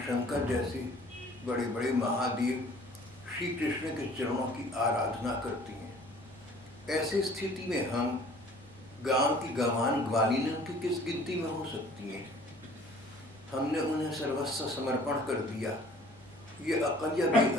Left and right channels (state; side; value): normal; both; correlation 0.52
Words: शंकर जैसे बड़े बड़े महादेव श्री कृष्ण के चरणों की आराधना करती हैं। ऐसी स्थिति में हम गांव की गंवान ग्वालिनों की किस गिनती में हो सकती हैं? हमने उन्हें सर्वस्व समर्पण कर दिया। ये अकल या